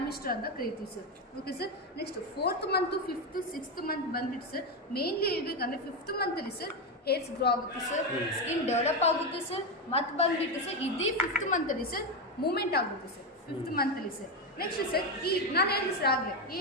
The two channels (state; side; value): normal; both; correlation 0.10